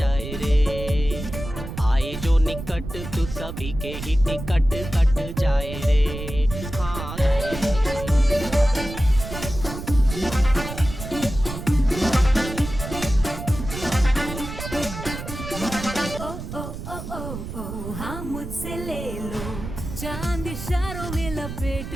रे। आए जो निकट तू सभी के ही टिकट कट जाए रे, हाँ जाए रे। हाँ मुझसे ले लो चांद इशारों में लपेट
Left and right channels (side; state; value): right; noise; rumble, 9 dB below the sound